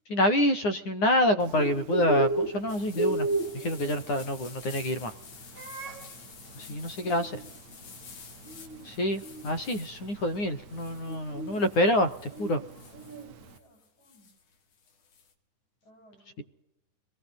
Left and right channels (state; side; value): late; right; 9.9 ms